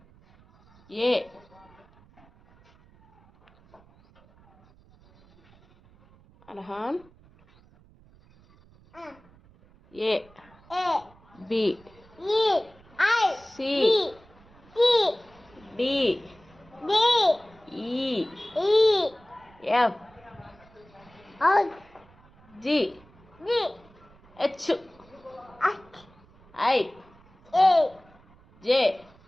A. Arhan. A. B. C. D. E. F. G. H. I. J.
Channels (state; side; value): noise; right; rumble, 27 dB below the sound